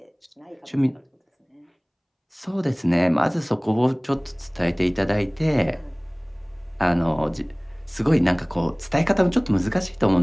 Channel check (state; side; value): identical; both; correlation 1.00